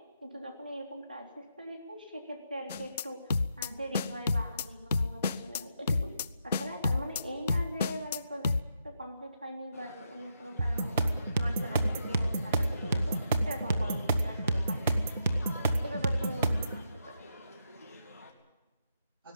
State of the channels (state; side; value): inverted; both; correlation -0.82